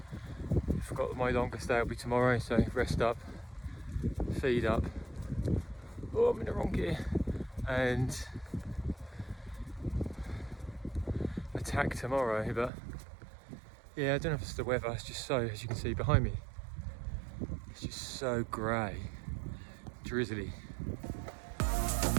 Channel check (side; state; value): left; drops out; at 12.7 s